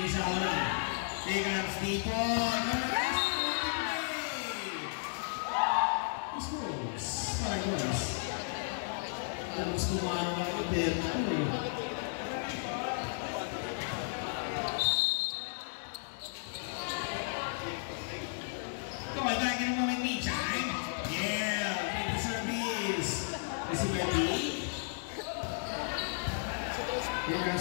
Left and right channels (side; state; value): right; silent; digital silence